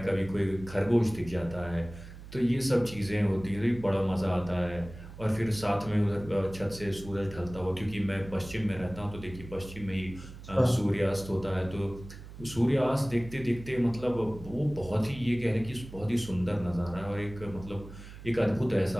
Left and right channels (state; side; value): noise; right; hum, 15 dB below the sound